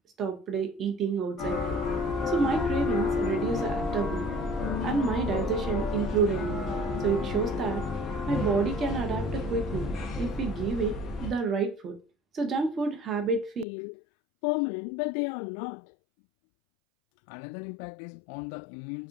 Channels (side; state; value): right; drops out; at 13.7 s